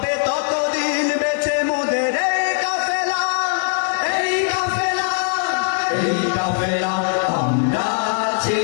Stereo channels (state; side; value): silent; right; digital silence